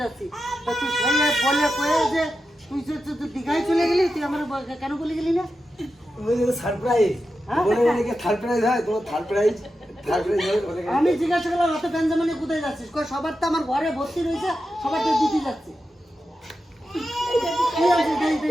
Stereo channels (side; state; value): both; normal; correlation 0.90